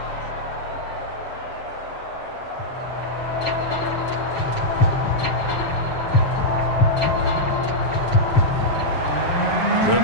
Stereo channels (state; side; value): late; right; 7.5 ms